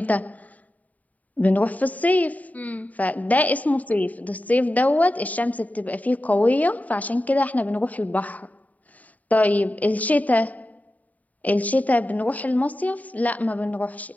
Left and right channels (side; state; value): right; late; 0.073 ms